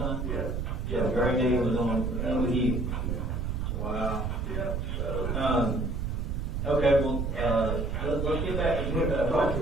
Yeah. So Gray Day was on with you. Wow. Yeah. So, okay, well, let's get back to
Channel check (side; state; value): right; noise; rumble, 1 dB below the sound